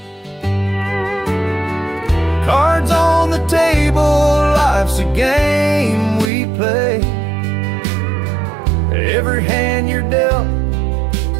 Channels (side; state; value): left; drops out; at 6.3 s